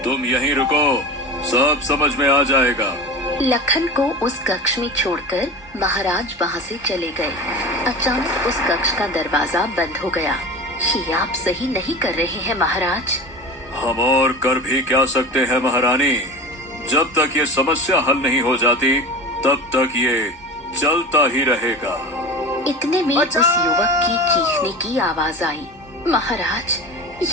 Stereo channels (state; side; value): normal; both; correlation 0.32